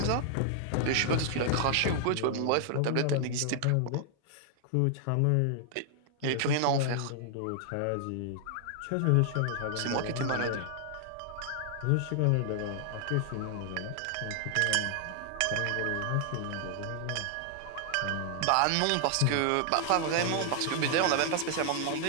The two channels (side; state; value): both; different; correlation 0.00